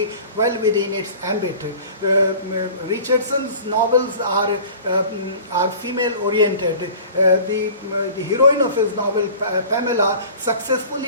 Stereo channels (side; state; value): both; inverted; correlation -0.43